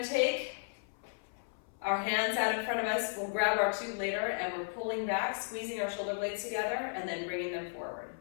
to take our hands out in front of us. We'll grab our tube later, and we're pulling back, squeezing our shoulder blades together, and then bringing them forward.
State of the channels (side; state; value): right; silent; 55 dB below the other